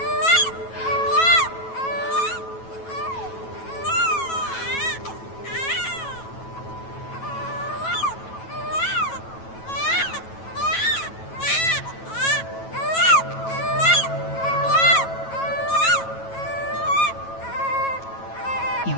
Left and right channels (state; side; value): late; right; 9.2 ms